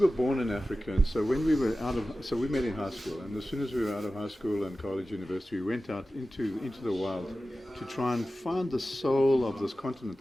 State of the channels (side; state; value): both; normal; correlation 0.95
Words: born in Africa, and so when we were so we met in high school, and as soon as we were out of high school and college, university, we went out into the wild to try and find the soul of this continent